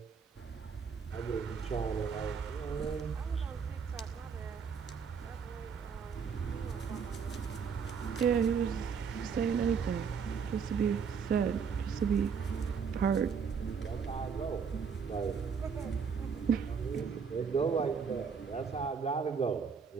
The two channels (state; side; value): quieter; left; 6.2 dB